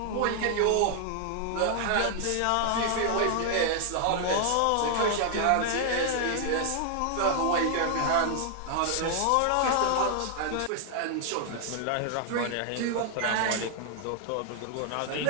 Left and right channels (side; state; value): both; different; correlation 0.00